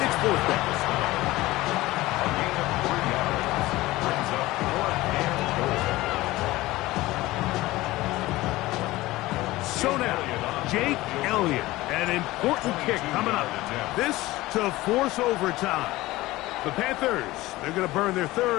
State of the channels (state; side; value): quieter; right; 18.4 dB